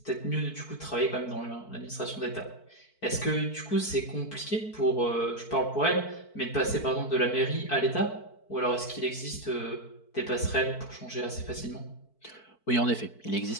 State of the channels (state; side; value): late; right; 4.5 ms